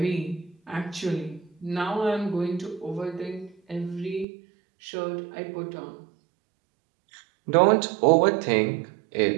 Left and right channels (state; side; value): drops out; left; at 4.2 s